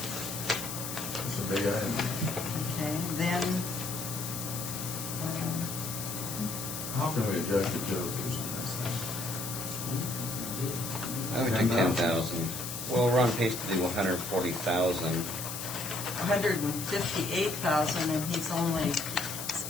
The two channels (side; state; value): left; noise; hiss, 6 dB below the sound